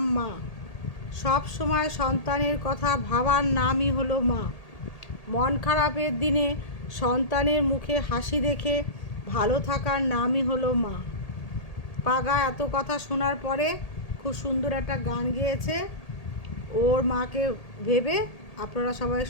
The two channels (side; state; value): right; late; 1.8 ms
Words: মা। সব সময় সন্তানের কথা ভাবার নামই হলো মা। মন খারাপের দিনে সন্তানের মুখে হাসি দেখে ভালো থাকার নামই হলো মা। পাগা এত কথা শোনার পরে খুব সুন্দর একটা গান গেয়েছে ওর মাকে ভেবে। আপনারা সবাই